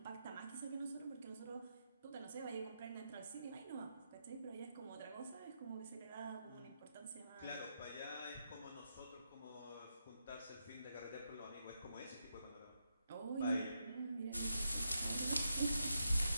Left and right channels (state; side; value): inverted; both; correlation -0.84